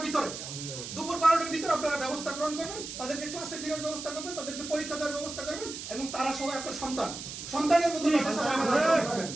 ভিতরে, দুপুর 12টার ভিতরে আপনারা ব্যবস্থা গ্রহণ করবেন, তাদেরকে ক্লাসে ফেরার ব্যবস্থা করবেন, তাদেরকে পরীক্ষা দেওয়ার ব্যবস্থা করবেন, এবং তারা সবাই আপনার সন্তানের মতো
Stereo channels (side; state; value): right; noise; hiss, 9 dB below the sound